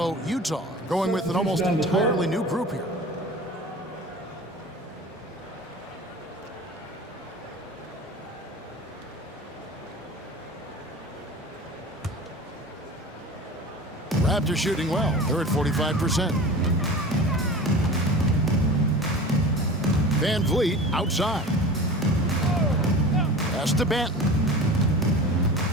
Utah going with an almost entirely new group here. Raptors shooting well. They're at 45%. Van Vliet outside. Pass to Banton.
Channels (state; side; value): normal; both; correlation 0.36